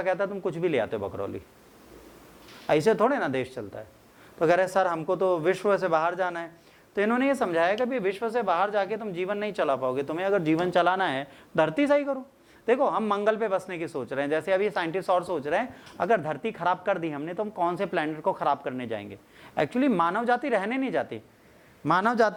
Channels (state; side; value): identical; both; correlation 1.00